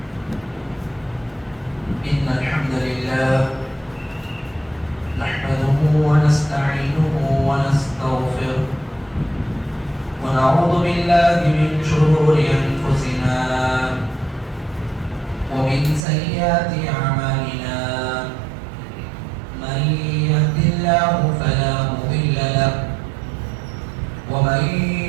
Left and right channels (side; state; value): left; drops out; at 16.1 s